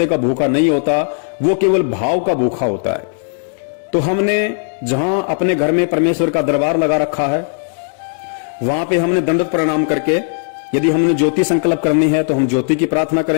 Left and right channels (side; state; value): right; silent; digital silence